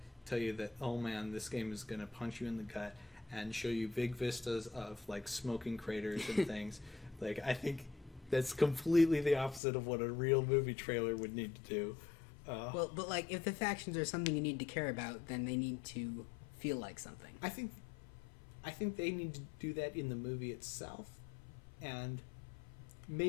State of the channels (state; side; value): drops out; right; at 9.6 s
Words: tell you that, oh man, this game is going to punch you in the gut and show you big vistas of, like, smoking craters and things. Like, I think that's completely the opposite of what a real movie trailer would need to do. Well, but, like, if the factions are something you need to care about, then they need to feel like something. I think they need to do that in the movie itself and